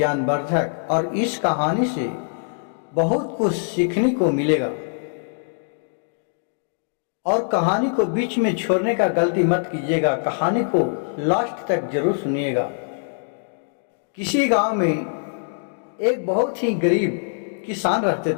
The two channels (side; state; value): right; silent; digital silence